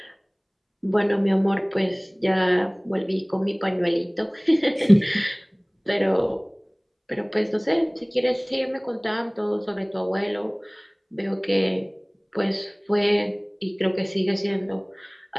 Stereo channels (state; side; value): identical; both; correlation 1.00